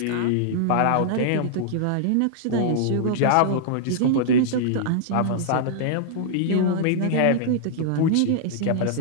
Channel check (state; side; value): different; both; correlation -0.01